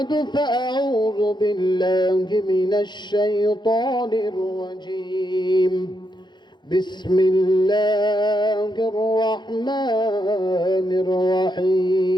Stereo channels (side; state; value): right; late; 0.21 ms